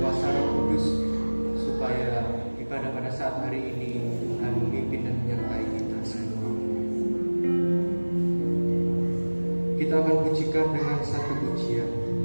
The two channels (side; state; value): both; inverted; correlation -1.00